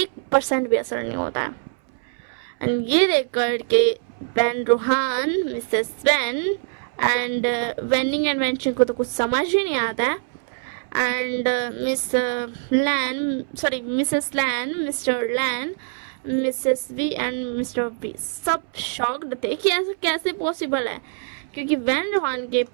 भी असर नहीं होता है। एंड ये देख कर के Van Rohan, Mrs Van and वेनिंग एंड वेंशिंग को तो कुछ समझ ही नहीं आता है। And Mrs Lan, Mr Lan, Mrs V and Mr B सब शॉक्ड थे कि ऐसा कैसे पॉसिबल है, क्योंकि वैन रोहान के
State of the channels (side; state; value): left; silent; 63 dB below the other